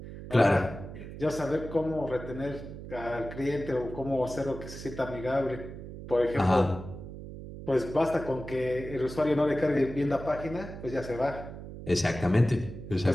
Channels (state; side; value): noise; right; hum, 11 dB below the sound